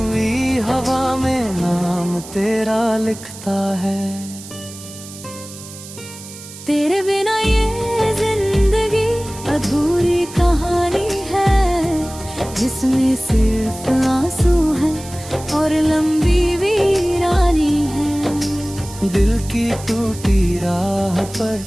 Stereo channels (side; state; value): right; noise; hiss, 15 dB below the sound